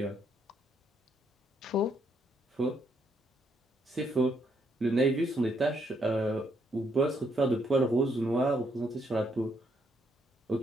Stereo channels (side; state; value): both; normal; correlation 0.74